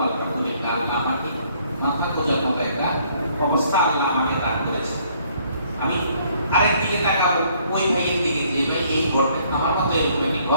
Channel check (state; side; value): inverted; both; correlation -0.64